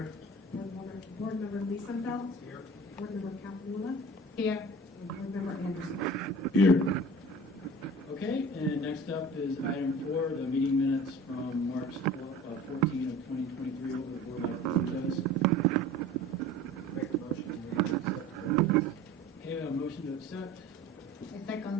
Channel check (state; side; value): normal; both; correlation 0.41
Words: Board Member Liesenfeld. Here. Board Member Campbell. Here. And Board Member Anderson. Here. Okay, and next up is item 4, the meeting minutes from March 14 of 2023 over the board by those. Make a motion to accept. Okay, we have a motion to accept. A